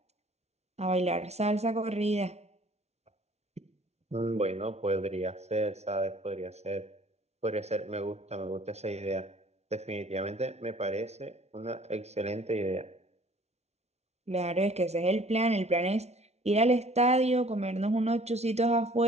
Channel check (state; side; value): late; left; 0.31 ms